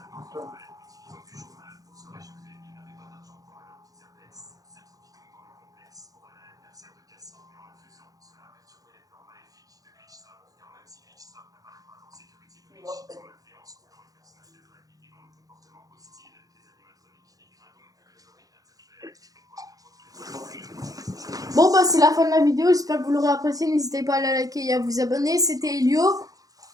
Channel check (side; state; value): left; late; 0.17 ms